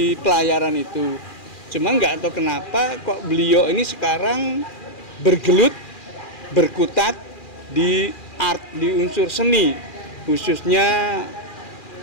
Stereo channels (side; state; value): right; late; 2.4 ms